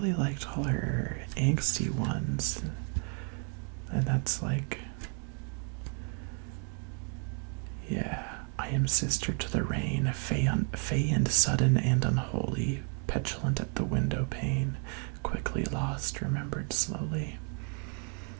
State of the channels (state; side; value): quieter; left; 37.5 dB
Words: liked all her angsty ones, and that's like, yeah, I am sister to the rain, fey and sudden and unholy, petulant at the window pane, quickly lost, remembered slowly.